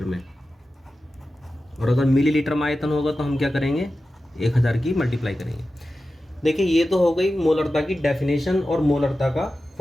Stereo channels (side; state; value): both; normal; correlation 0.93